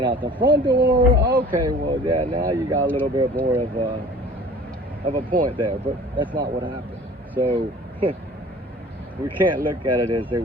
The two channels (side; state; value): both; normal; correlation 0.46